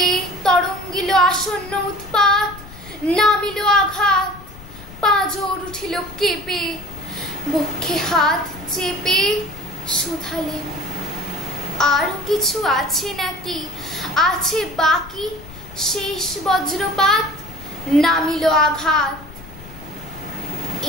তরঙ্গিল আসন্ন উৎপাত, নামিল আঘাত, পাঁজর উঠিল কেঁপে। বক্ষে হাত চেপে শুধালে, আরো কিছু আছে নাকি, আছে বাকি শেষ বজ্রপাত? নামিল আঘাত,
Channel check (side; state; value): left; noise; rumble, 17 dB below the sound